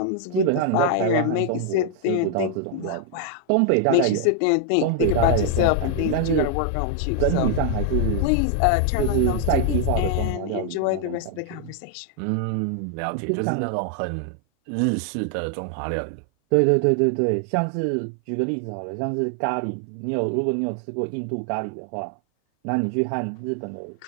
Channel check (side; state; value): both; different; correlation 0.00